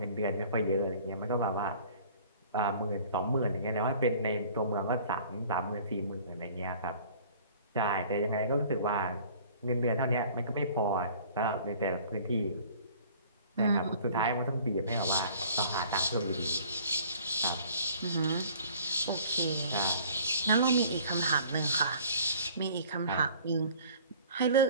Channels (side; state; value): both; inverted; correlation -0.50